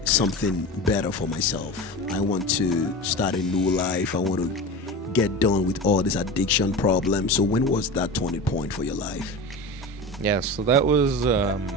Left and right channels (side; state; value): both; normal; correlation 0.29